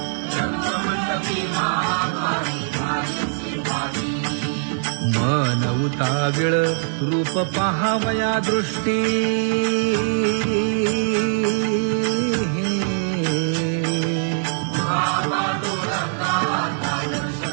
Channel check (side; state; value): left; silent; digital silence